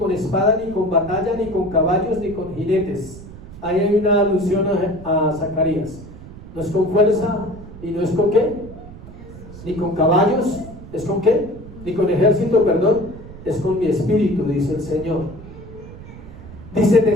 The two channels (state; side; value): noise; right; rumble, 15 dB below the sound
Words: espada, ni con batalla, ni con caballos, ni con jinetes. Ahí hay una alusión a Zacarías. No es con fuerza, y no es con ¿qué? Ni con caballos, ¿es con qué? Ni con ejército, perdón, es con mi espíritu, dice el Señor. Dice: